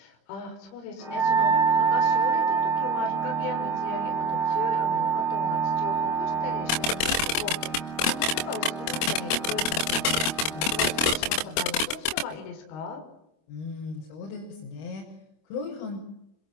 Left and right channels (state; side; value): late; right; 26 ms